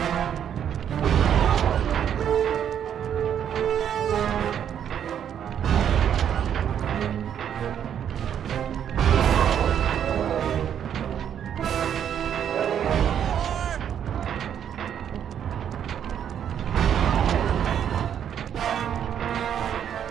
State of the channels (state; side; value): quieter; left; 9.1 dB